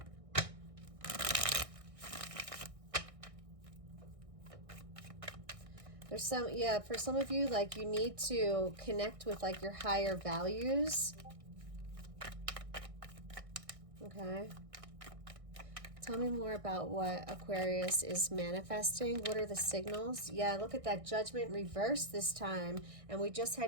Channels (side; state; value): left; late; 1.6 ms